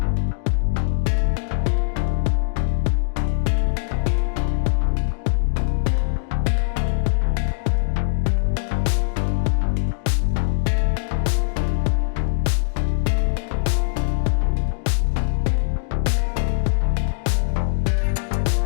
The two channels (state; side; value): silent; right; digital silence